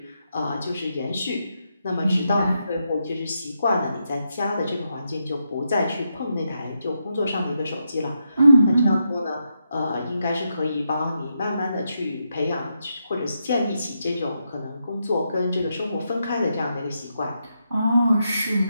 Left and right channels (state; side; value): inverted; both; correlation -0.83